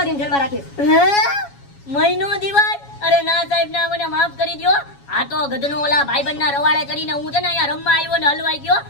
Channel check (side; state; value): right; late; 7.2 ms